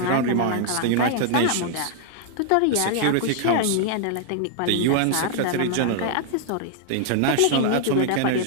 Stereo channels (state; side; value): different; both; correlation -0.01